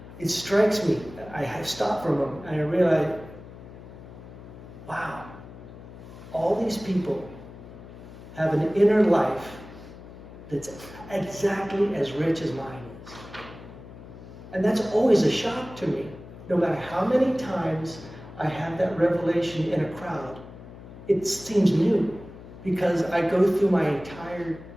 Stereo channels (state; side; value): noise; left; hum, 16 dB below the sound